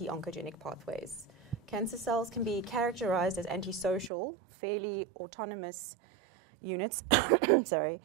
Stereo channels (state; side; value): drops out; left; at 4.1 s